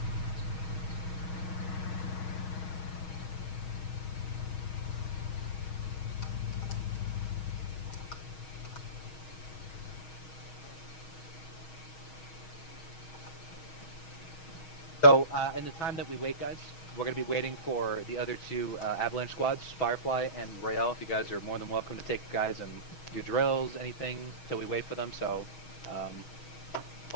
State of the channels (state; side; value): late; right; 6.3 ms